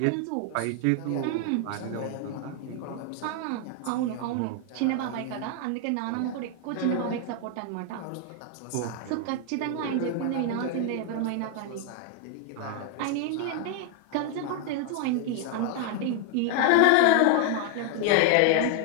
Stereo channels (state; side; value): different; both; correlation 0.00